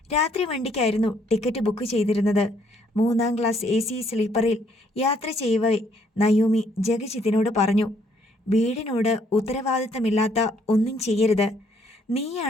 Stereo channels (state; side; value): normal; both; correlation 0.67